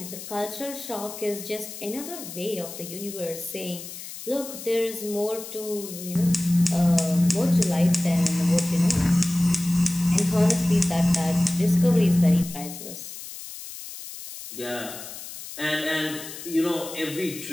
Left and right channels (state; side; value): noise; left; hiss, 12 dB below the sound